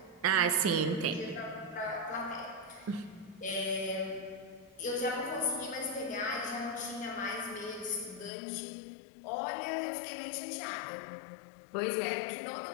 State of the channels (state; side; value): drops out; right; at 8.3 s